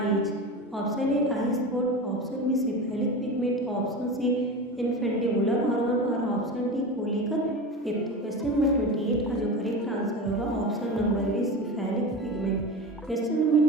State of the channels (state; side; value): normal; both; correlation 0.27